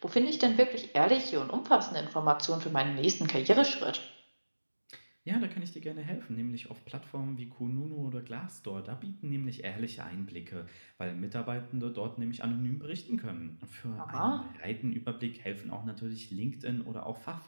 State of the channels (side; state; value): both; inverted; correlation -1.00